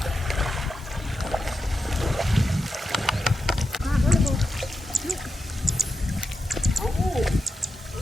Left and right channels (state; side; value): normal; both; correlation 0.89